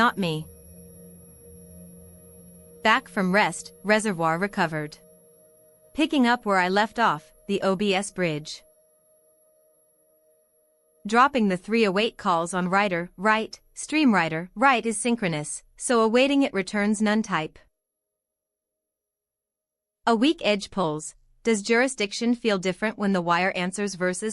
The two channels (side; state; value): both; identical; correlation 1.00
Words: me. Back from rest, reservoir recovered. Picking up where I left off, the OBS bridge. Dropping the 308 calls on writer, write, stream writer, write is synchronous, so awaiting it returns none type. A weak edge pulls. Does jurisdiction feel different when the wire answers